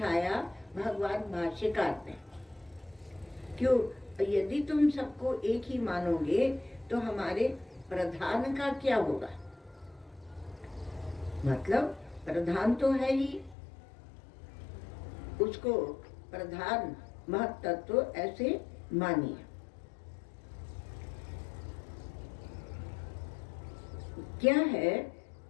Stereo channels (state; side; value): drops out; right; at 13.6 s